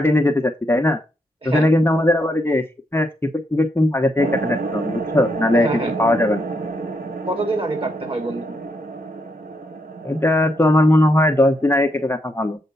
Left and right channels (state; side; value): normal; both; correlation 0.79